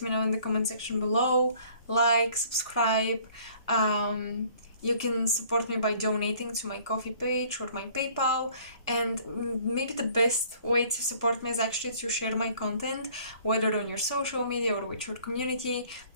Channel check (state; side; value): inverted; both; correlation -0.55